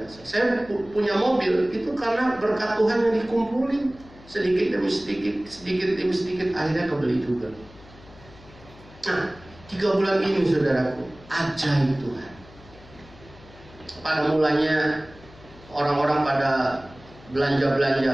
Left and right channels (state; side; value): noise; left; hum, 22 dB below the sound